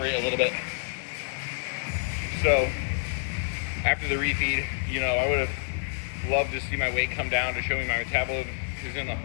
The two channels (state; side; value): silent; right; 59 dB below the other